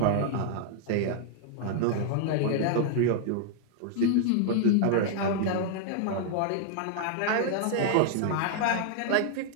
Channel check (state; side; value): different; both; correlation 0.00